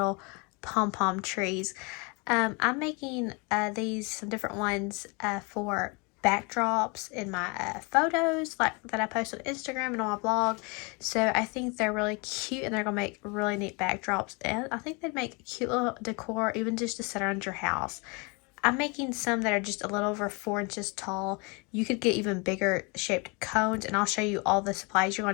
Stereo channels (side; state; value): right; quieter; 30.5 dB